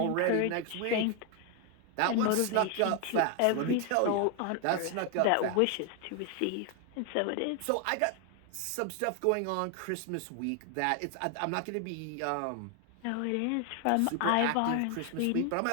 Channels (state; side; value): different; both; correlation 0.01